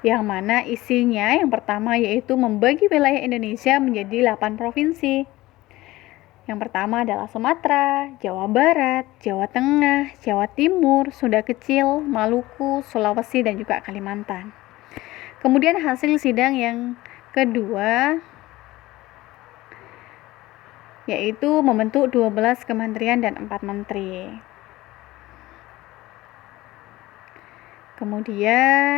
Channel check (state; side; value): quieter; right; 18.1 dB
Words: mana isinya yang pertama yaitu membagi wilayah Indonesia menjadi 8 provinsi. Yang pertama adalah Sumatera, Jawa Barat, Jawa Tengah, Jawa Timur, Sunda Kecil, Maluku, Sulawesi, dan juga Kalimantan. Kemudian hasil sidang yang kedua yaitu membentuk 12 kementerian dan 4 menteri.